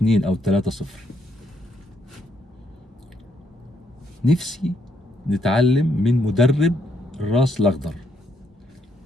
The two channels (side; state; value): both; normal; correlation 0.74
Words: أو 3-0. نفسي نتعلم من مدرب الراس الأخضر.